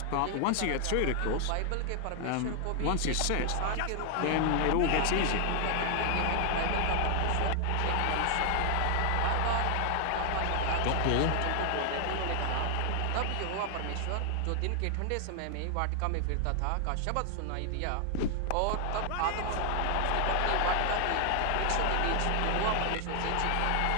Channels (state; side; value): different; both; correlation 0.00